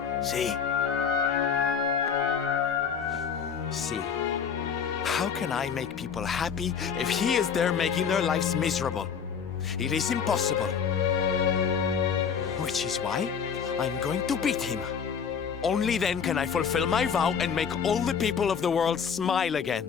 See? See, how can I make people happy if he is there making their lives miserable? It is impossible. Which is why I'm going to beat him. Only then can I fulfill my vow and make all the people of the world smile again.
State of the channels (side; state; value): right; quieter; 6.9 dB